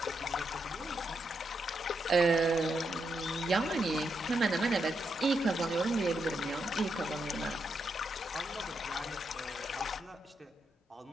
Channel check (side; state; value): both; normal; correlation 0.82